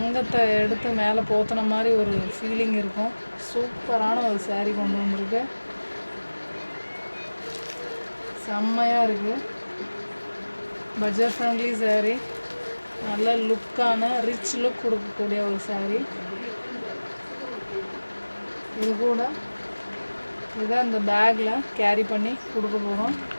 எடுத்து மேலே போத்தின மாதிரி ஒரு ஃபீலிங் இருக்கும். சூப்பரான ஒரு சேரீ கொண்டு வந்திருக்கு. செம்மையாக இருக்குது. பட்ஜெட் ஃப்ரெண்ட்லி சேரீ, நல்ல லுக்கான ரிச் லுக் கொடுக்கக்கூடிய ஒரு சேரீ. இது கூட இதை இந்த பேக்கில் கேரி பண்ணி கொடுக்க போகிறோம்.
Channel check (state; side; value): inverted; both; correlation -1.00